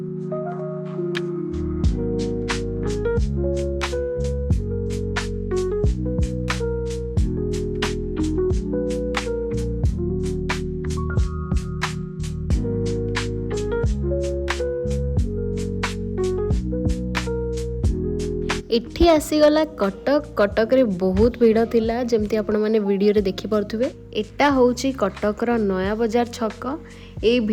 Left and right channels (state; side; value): identical; both; correlation 1.00